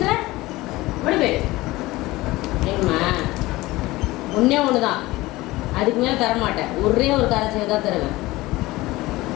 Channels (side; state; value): right; quieter; 19.3 dB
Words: ஓடி போய் ஏங்கம்மா ஒன்றே ஒன்று தான், அதுக்கு மேலே தரமாட்டேன். ஒரே ஒரு காரை தான் தருவேன்.